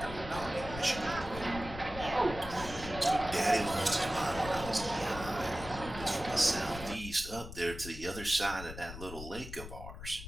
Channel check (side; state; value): left; noise; rumble, 11 dB below the sound